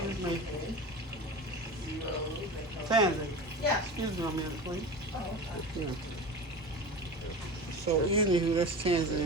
me. Tansy. Yeah. Excuse me a minute, please. Yeah. So anywho, that's Tansy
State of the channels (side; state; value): both; normal; correlation 0.31